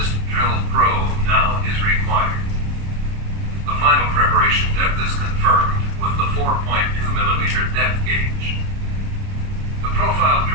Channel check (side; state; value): left; late; 29 ms